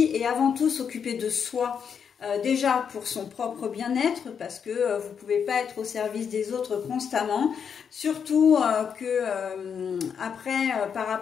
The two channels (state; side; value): quieter; right; 7.1 dB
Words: et avant tout s'occuper de soi. Déjà pour son propre bien-être, parce que vous ne pouvez pas être au service des autres constamment, surtout que après par